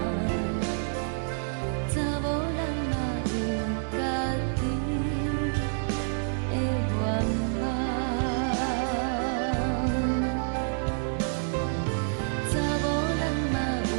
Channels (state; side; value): silent; left; 59 dB below the other